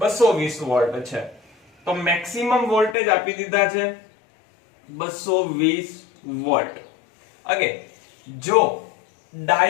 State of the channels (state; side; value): drops out; right; at 3.0 s